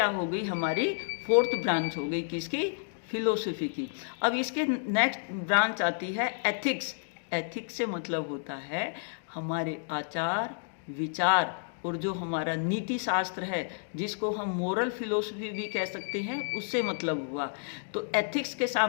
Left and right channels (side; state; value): right; silent; digital silence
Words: हो गई? हमारी फोर्थ ब्रांच हो गई, किसकी? फिलोसफी की। अब इसके नेक्स्ट ब्रांच आती है एथिक्स। एथिक्स से मतलब होता है हमारे आचार विचार और जो हमारा नीति शास्त्र है, जिसको हम मोरल फिलोसफी भी कह सकते हैं, उससे मतलब हुआ। तो एथिक्स के